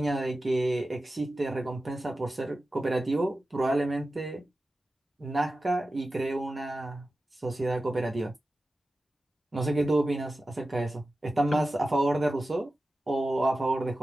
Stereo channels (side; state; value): both; normal; correlation 0.94